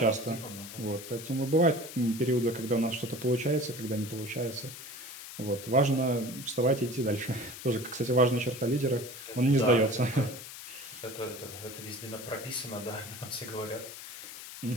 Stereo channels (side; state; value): left; noise; hiss, 12 dB below the sound